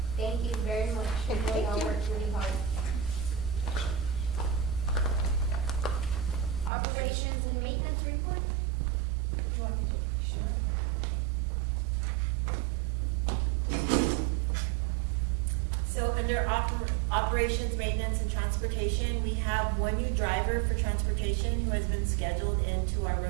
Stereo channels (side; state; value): left; drops out; at 6.7 s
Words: Thank you very much. Okay, You thank all you. worked really hard. Operations and maintenance report? You want me to? Sure. So under operations, maintenance, and transportation, we have 1 new driver for transportation who has been scheduled into our